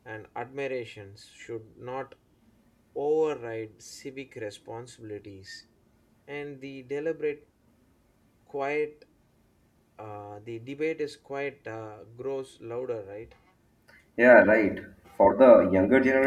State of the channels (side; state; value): both; identical; correlation 1.00